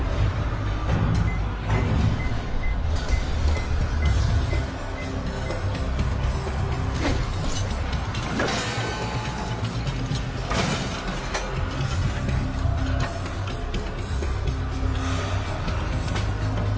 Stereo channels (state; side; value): identical; both; correlation 1.00